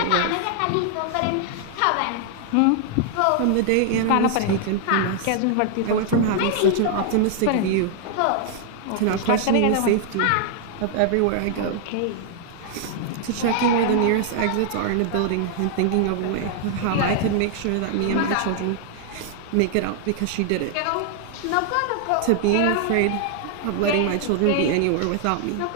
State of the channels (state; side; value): different; both; correlation 0.00